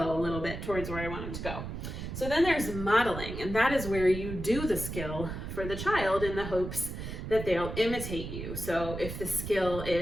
a little bit towards where I want them to go. So then there's modeling, and that is where you do the skill for the child in the hopes that they'll imitate you. So if the skill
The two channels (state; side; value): noise; right; rumble, 7 dB below the sound